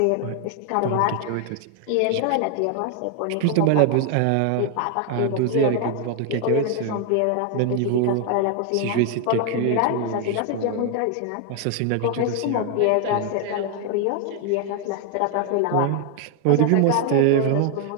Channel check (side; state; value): both; different; correlation 0.00